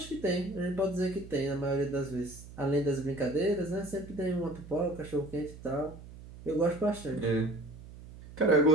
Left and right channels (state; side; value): noise; right; hum, 16 dB below the sound